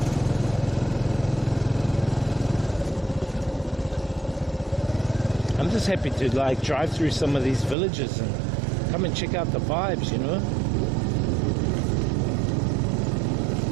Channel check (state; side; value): drops out; left; at 7.8 s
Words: I'm just happy to like drive through some of these villages and come and check out the vibes, you know.